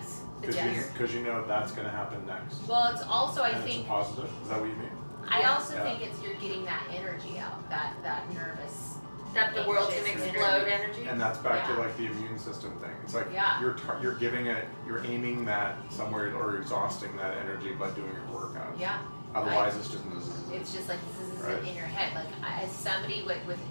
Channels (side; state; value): both; inverted; correlation -1.00